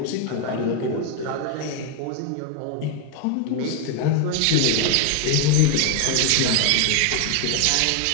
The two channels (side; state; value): both; different; correlation 0.01